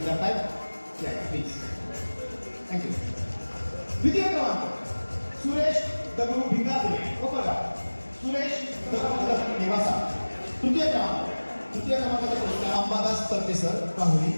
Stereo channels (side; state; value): both; inverted; correlation -1.00